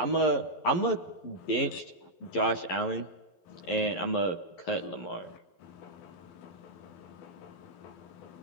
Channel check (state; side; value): late; right; 11 ms